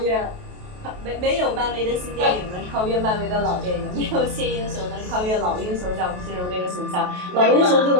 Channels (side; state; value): left; late; 28 ms